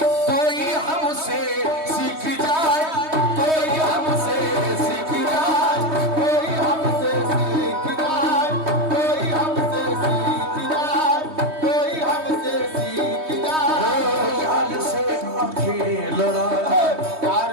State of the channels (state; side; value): late; left; 3.2 ms